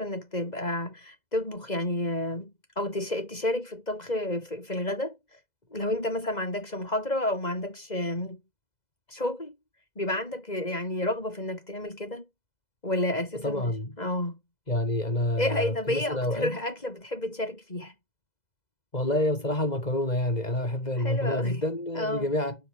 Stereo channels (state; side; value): late; right; 2.0 ms